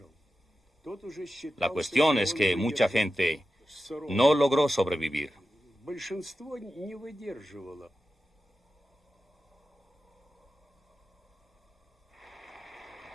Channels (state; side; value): normal; both; correlation 0.92